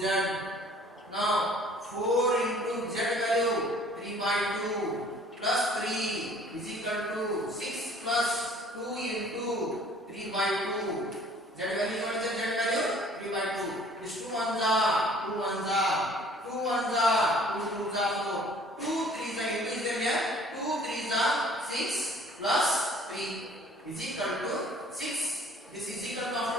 Now 4 into z value 3 by 2 plus 3 is equal to 6 plus 2 into 3 by 2. Z value, what is the Z value? 3 by 2. This 2 ones are 2 ones are 2 ones are 2 twos are 4. 2 threes are into is there here? 2 threes are 6 plus 3 is equal to 6. This is equal to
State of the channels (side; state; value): both; normal; correlation 0.54